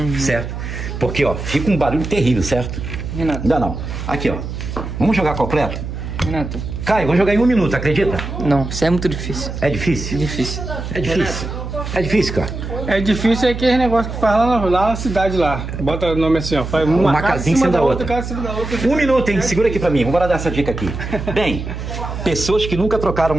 certo? Porque, ó, fica um barulho terrível, certo? Renato. Ainda não. Aqui, ó. Vamos jogar completo? Renato. Caio, vou jogar em 1 minuto, acredita? Não, isso é muito difícil. É difícil? Difícil. É difícil. É difícil, cara. É difícil aquele negócio que faz lá na cidade lá. Bota o nome assim, ó. Faz Uma casinha em cima da outra. casa em cima da outra. 1 minuto, hein? Segura aqui pra mim. Vamos dar essa dica aqui. Bem, pessoas que nunca trocaram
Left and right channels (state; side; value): noise; right; hum, 7 dB below the sound